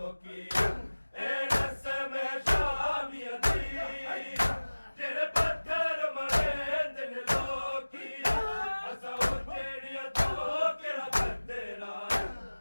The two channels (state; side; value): inverted; both; correlation -1.00